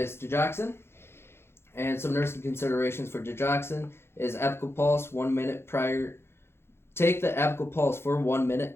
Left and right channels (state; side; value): late; right; 0.12 ms